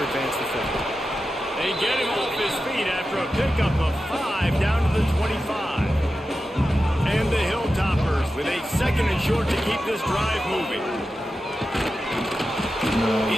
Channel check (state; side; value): normal; both; correlation 0.92